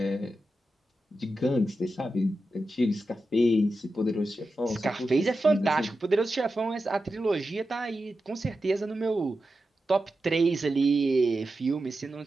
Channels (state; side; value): normal; both; correlation 0.91